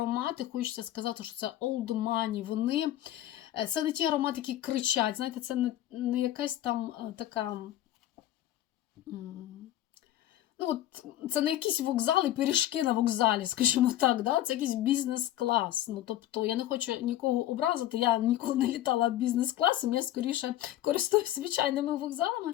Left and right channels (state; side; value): quieter; right; 13.3 dB